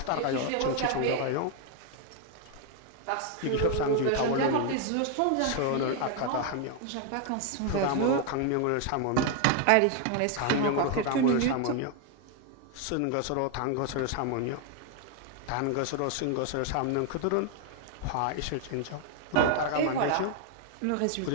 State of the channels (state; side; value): different; both; correlation 0.00